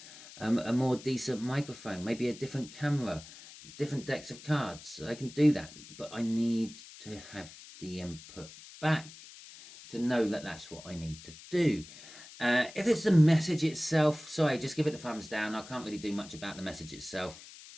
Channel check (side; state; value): left; noise; hiss, 17 dB below the sound